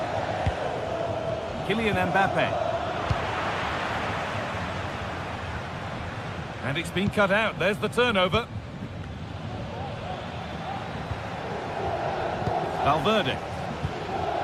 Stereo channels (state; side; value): identical; both; correlation 1.00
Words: Kylian Mbappe. And it's been cut out. There's the turnover. Valverde.